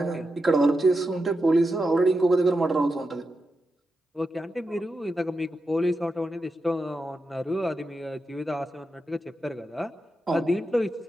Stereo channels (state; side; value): normal; both; correlation 0.88